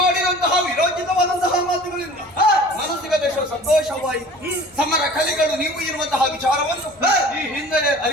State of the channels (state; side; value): noise; left; hum, 29 dB below the sound